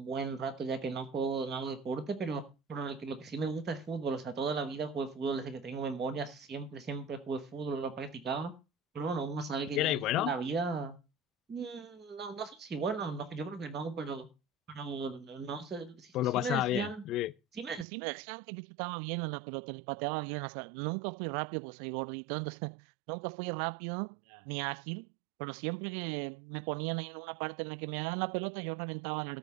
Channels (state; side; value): drops out; left; at 17.9 s